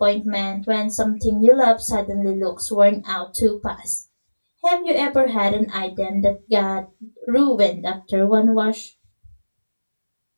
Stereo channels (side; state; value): both; inverted; correlation -1.00